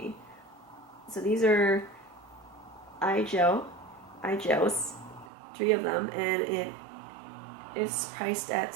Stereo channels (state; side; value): drops out; left; at 5.3 s